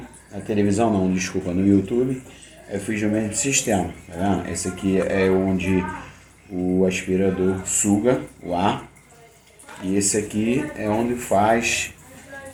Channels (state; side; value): identical; both; correlation 1.00